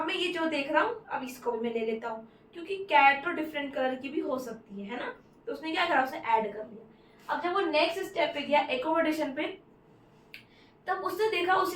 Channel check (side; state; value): both; identical; correlation 1.00